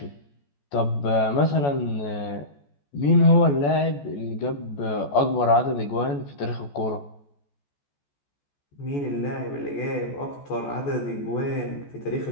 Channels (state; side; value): late; right; 14 ms